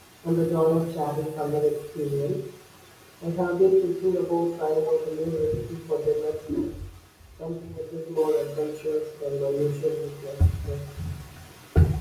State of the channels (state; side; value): identical; both; correlation 1.00